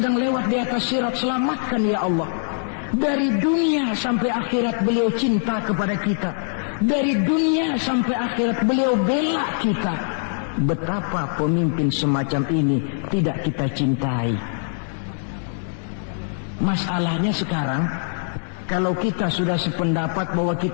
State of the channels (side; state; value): right; silent; 64 dB below the other